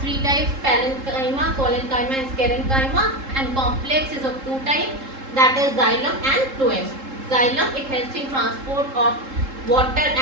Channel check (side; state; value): left; late; 3.7 ms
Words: three types: parenchyma, collenchyma and sclerenchyma. And complex is of two types, that is xylem and phloem. Xylem, it helps in transport of water